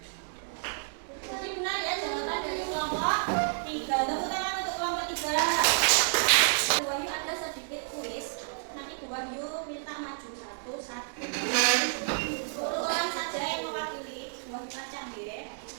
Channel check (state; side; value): silent; left; digital silence